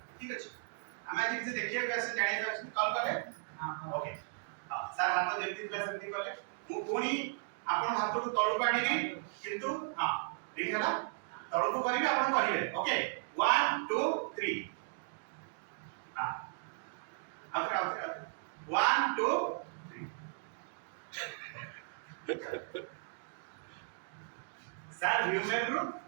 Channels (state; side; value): silent; left; digital silence